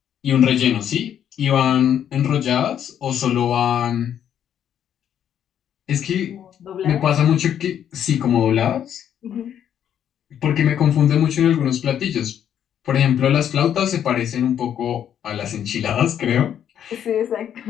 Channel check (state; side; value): quieter; right; 9.6 dB